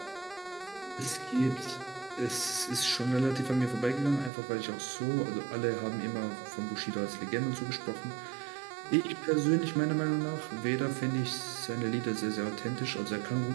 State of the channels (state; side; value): drops out; left; at 4.3 s